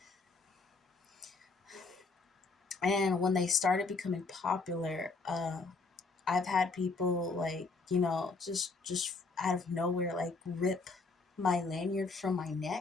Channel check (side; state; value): right; quieter; 3.9 dB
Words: And when they started becoming popular, I've had people like, just out of nowhere, like rip my lanyard from my